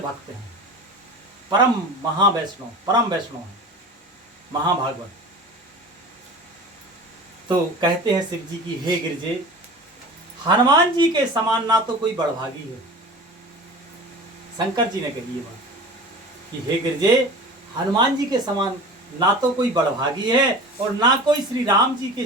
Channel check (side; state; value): both; normal; correlation 0.36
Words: हैं, परम महावैष्णव, परम वैष्णव हैं, महाभागवत। तो कहते हैं शिव जी की हे गिरजे, हनुमान जी के समान ना तो कोई बड़भागी है। शंकर जी ने कही ये बात कि हे गिरजे, हनुमान जी के समान ना तो कोई बड़भागी है और ना कोई श्री राम जी के